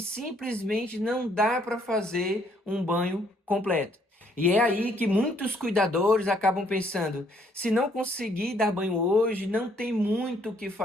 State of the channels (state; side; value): normal; both; correlation 0.67